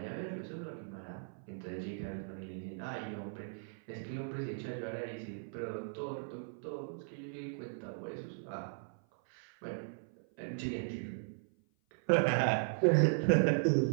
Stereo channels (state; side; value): silent; left; 53 dB below the other